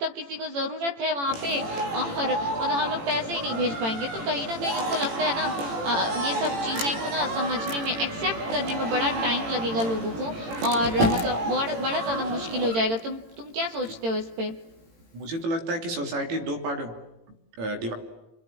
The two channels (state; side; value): late; left; 18 ms